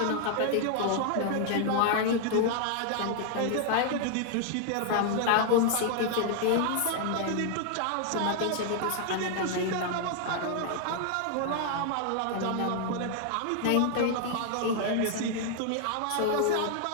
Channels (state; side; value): different; both; correlation 0.00